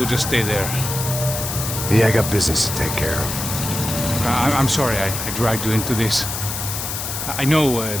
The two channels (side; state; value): left; noise; hiss, 5 dB below the sound